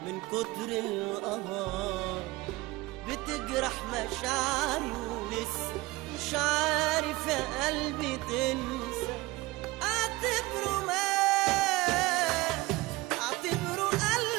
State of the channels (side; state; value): left; quieter; 21.0 dB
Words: من كتر القهر بتجرح مشاعري ولسه مش عارف يا قلبي تنسى. اعتبره مات، اعتبره